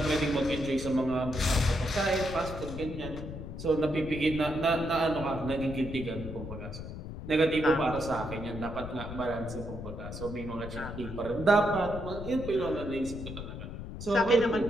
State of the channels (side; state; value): left; noise; rumble, 9 dB below the sound